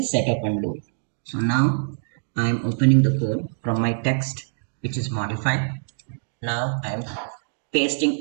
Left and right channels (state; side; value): silent; left; digital silence